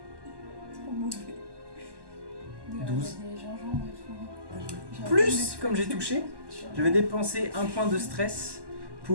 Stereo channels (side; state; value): left; late; 1.1 ms